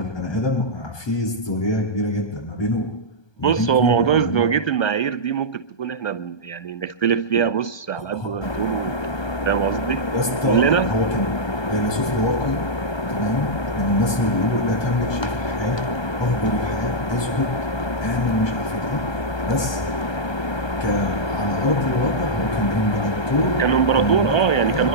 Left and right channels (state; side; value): late; right; 1.3 ms